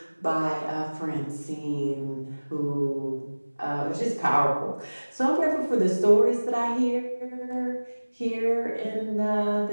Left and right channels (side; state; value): both; inverted; correlation -1.00